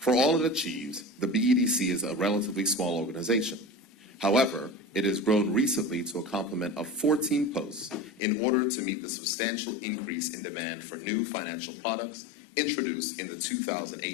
all it achieves, the BEDC is a relatively small organization. However, it has grown recently to a complement of 14 posts in order to meet the substantial increase in demand for new financial products introduced in the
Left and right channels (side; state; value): right; drops out; at 8.2 s